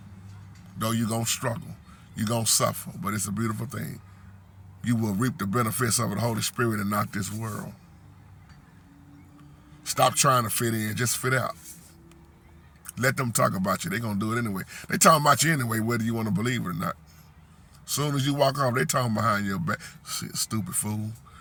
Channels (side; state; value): both; identical; correlation 1.00